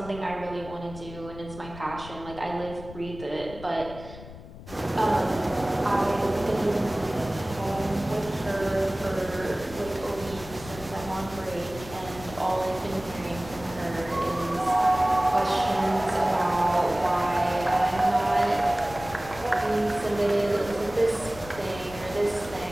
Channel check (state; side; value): noise; left; rumble, 15 dB below the sound